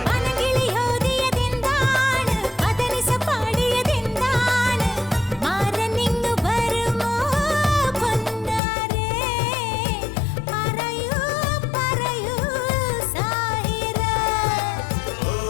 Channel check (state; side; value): drops out; right; at 8.6 s